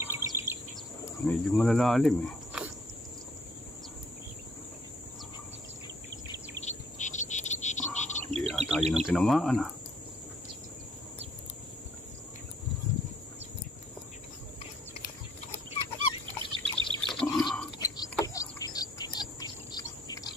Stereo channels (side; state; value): both; normal; correlation 0.62